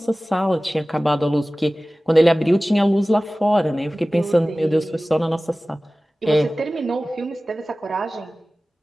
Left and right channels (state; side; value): normal; both; correlation 0.97